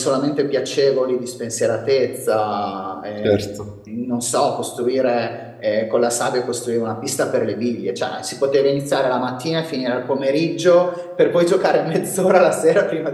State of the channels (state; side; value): identical; both; correlation 1.00